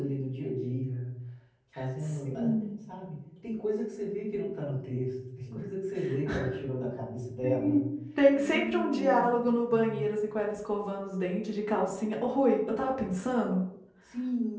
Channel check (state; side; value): identical; both; correlation 1.00